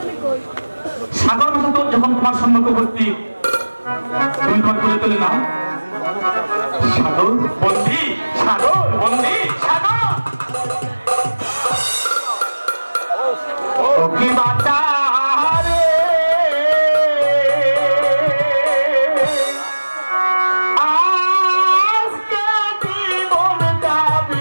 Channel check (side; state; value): both; inverted; correlation -1.00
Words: সাগর তো যখন তোমার সম্মুখবর্তী তুমি তোমার কোলে তুলে নাও। সাগর বন্দি, সাগর বন্দি, সাগর ও কি বাঁচা রে আজকে জীবন